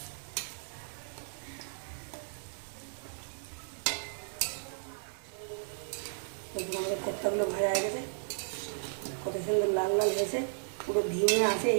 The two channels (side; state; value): left; silent; digital silence